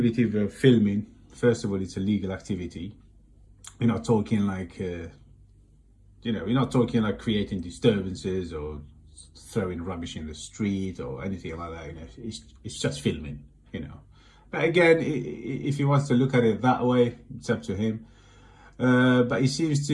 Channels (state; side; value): identical; both; correlation 1.00